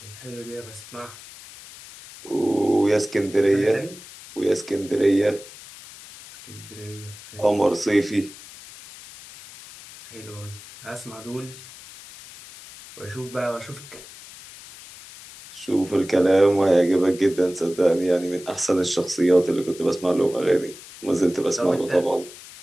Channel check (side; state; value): left; noise; hiss, 17 dB below the sound